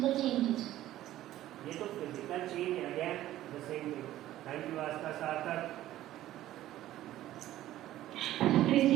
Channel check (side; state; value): left; quieter; 14.0 dB